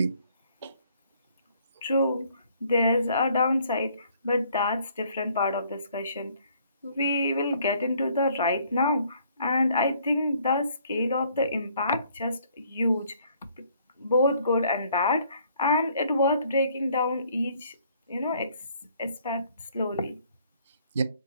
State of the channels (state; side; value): inverted; both; correlation -0.63